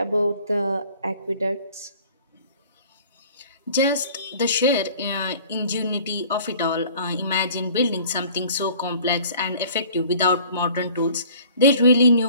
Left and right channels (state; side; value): inverted; both; correlation -0.50